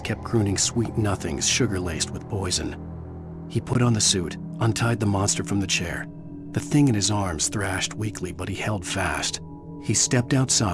crooning sweet nothings sugar-laced with poison. He put on the suit, untied the monster from the chair. The thing in his arms thrashed weakly, but he held fast. He stepped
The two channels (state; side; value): identical; both; correlation 1.00